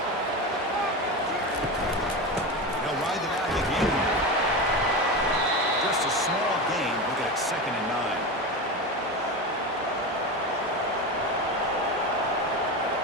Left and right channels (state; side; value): normal; both; correlation 0.22